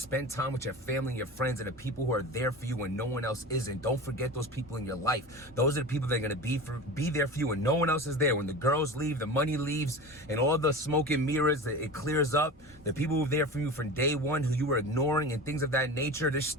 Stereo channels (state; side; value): normal; both; correlation 0.31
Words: time with your family and your friends and the people who are there for you when no one else isn't. Don't forget those people in your life. Those are the people that are going to be there for you when no one else is there. When the girls leave, the money leaves, and all the smoke and mirrors, it clears up. The people who are there for you from day one who you were ignoring and things of that nature, they're